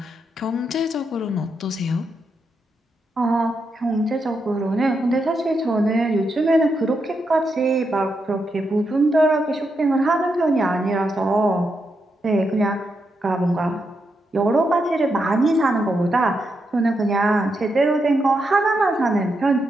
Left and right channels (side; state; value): both; normal; correlation 0.83